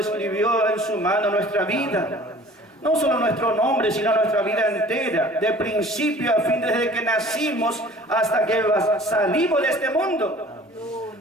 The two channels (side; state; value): both; normal; correlation 0.48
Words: en su mano nuestra vida. No solo nuestro nombre, sino nuestra vida entera. De principio a fin, desde que nacimos hasta que salimos de este mundo.